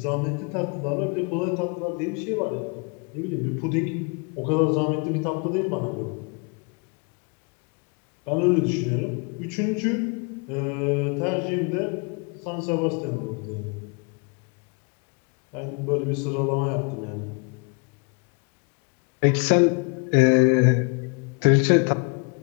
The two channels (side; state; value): right; quieter; 34.0 dB